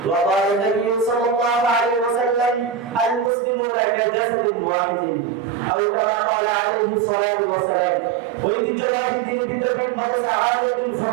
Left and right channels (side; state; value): left; drops out; at 3.3 s